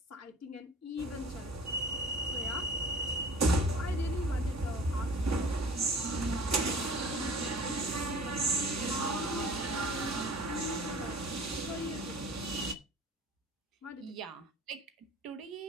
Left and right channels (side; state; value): both; normal; correlation 0.44